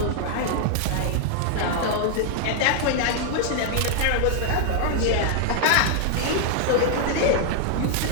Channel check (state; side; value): different; both; correlation 0.00